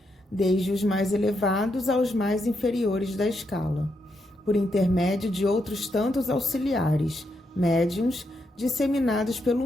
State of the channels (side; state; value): both; normal; correlation 0.81